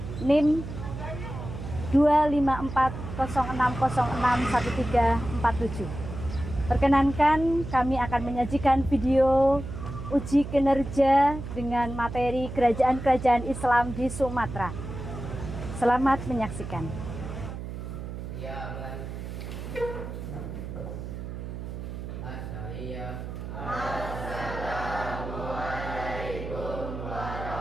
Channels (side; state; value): right; noise; hum, 8 dB below the sound